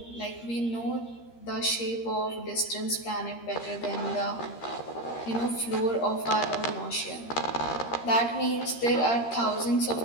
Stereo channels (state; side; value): late; right; 13 ms